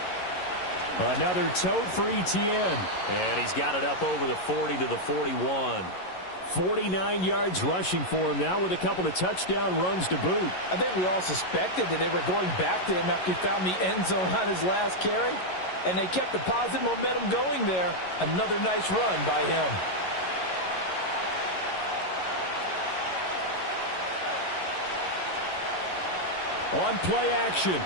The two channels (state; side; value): late; right; 11 ms